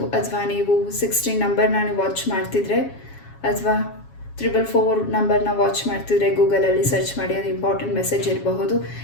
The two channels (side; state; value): right; late; 7.3 ms